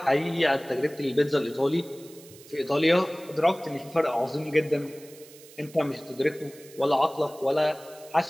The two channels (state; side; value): noise; right; hiss, 21 dB below the sound